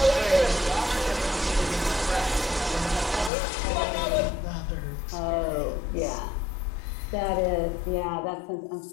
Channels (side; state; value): right; drops out; at 3.3 s